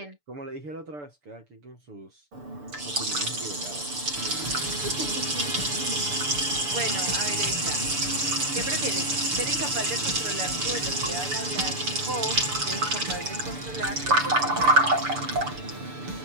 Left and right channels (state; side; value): late; left; 6.8 ms